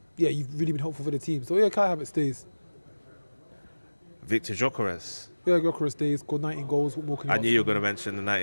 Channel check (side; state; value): both; inverted; correlation -1.00